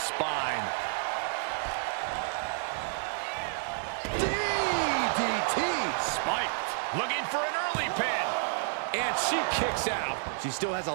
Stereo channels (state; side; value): silent; left; digital silence